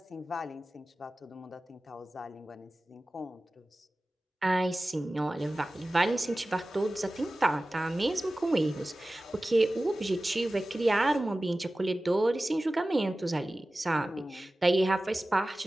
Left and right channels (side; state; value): both; normal; correlation 0.96